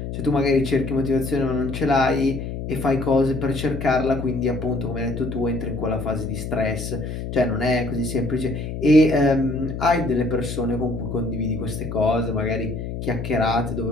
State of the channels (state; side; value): noise; left; hum, 6 dB below the sound